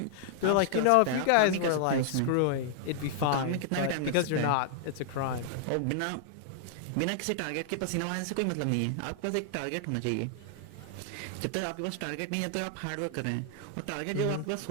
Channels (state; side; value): different; both; correlation -0.01